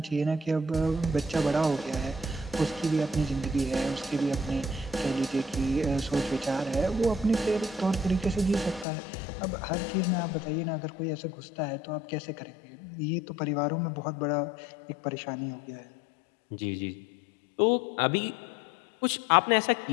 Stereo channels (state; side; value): drops out; right; at 8.8 s